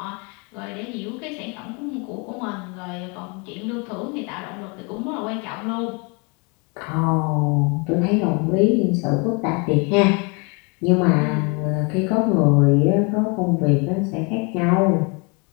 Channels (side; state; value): right; quieter; 32.0 dB